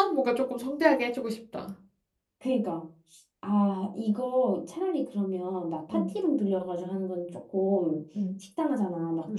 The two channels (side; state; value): both; identical; correlation 1.00